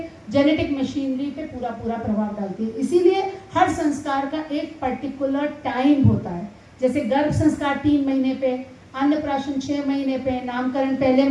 जेनेटिक मशीनरी पे पूरा प्रभाव डालती है। इसीलिए हर संस्कार का एक पर्टिकुलर टाइम होता है। जैसे गर्भ संस्कार 3 महीने पे, अन्नप्राशन 6 महीने पे, नामकरण पहले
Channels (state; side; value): identical; both; correlation 1.00